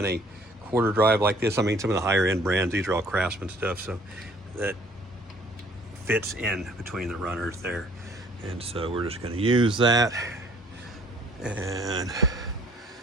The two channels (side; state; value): both; normal; correlation 0.57